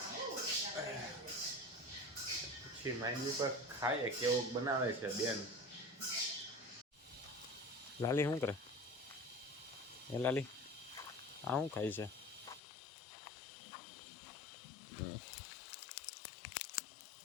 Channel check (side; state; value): right; drops out; at 12.6 s